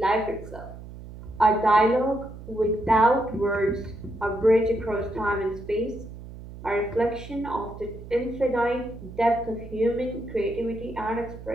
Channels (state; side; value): noise; right; hum, 14 dB below the sound